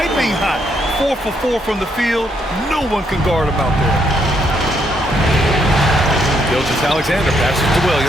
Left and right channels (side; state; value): both; normal; correlation 0.74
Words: hot. 4 for 4 from the field. No one can guard him out there. Gilgeous-Alexander passes to